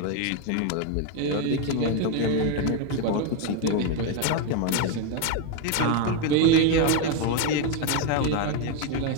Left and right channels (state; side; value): different; both; correlation 0.02